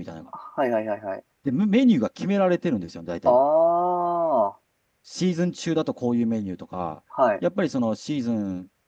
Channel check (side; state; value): both; identical; correlation 1.00